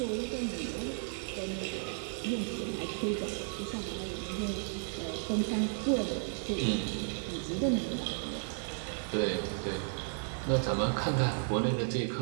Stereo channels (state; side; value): silent; left; digital silence